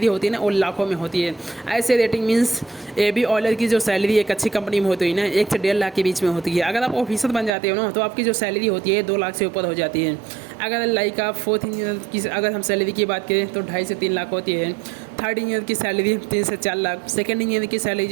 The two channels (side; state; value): left; drops out; at 7.5 s